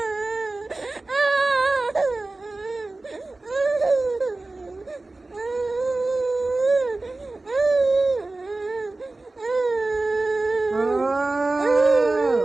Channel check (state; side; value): quieter; left; 3.1 dB